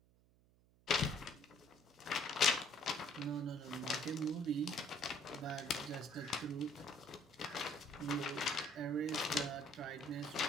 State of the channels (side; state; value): right; noise; hum, 30 dB below the sound